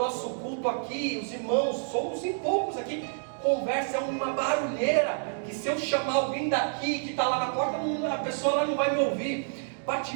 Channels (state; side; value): silent; left; digital silence